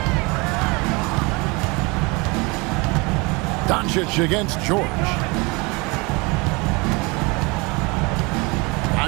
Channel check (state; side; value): quieter; left; 27.0 dB